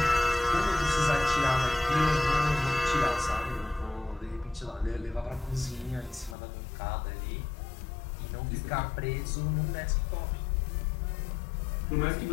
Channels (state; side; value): drops out; right; at 6.4 s